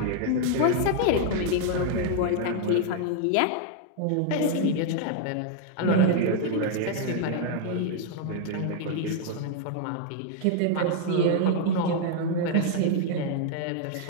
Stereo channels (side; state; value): both; different; correlation 0.00